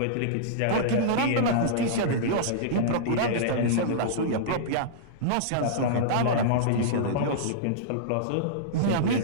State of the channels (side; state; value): both; different; correlation -0.03